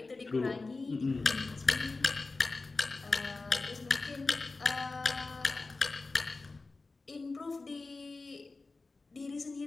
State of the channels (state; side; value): quieter; right; 3.7 dB